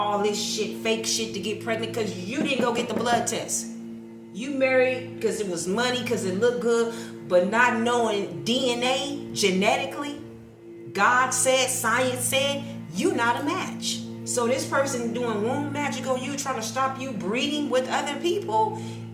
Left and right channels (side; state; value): both; identical; correlation 1.00